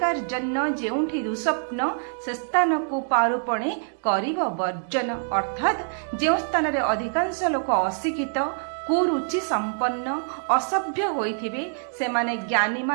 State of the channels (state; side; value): silent; left; 62 dB below the other